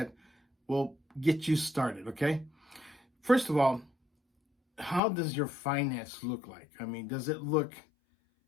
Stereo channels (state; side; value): drops out; right; at 5.0 s